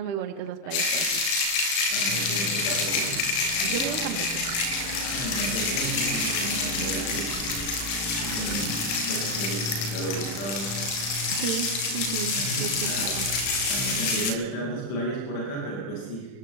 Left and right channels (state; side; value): late; right; 36 ms